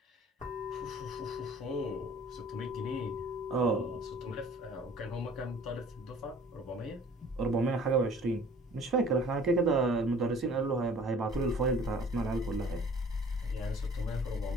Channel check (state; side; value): normal; both; correlation 0.50